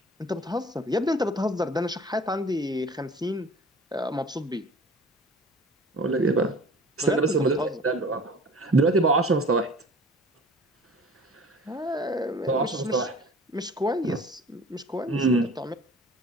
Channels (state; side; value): normal; both; correlation 0.44